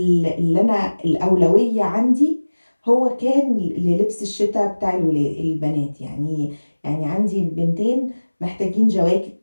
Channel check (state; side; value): inverted; both; correlation -1.00